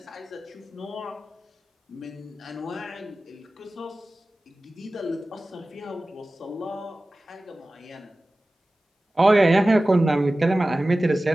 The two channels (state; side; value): normal; both; correlation 0.96